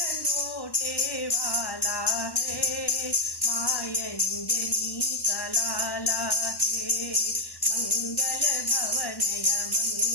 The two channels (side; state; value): right; late; 1.1 ms